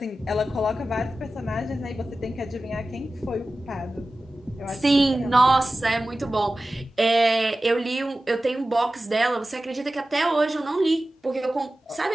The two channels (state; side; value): normal; both; correlation 0.95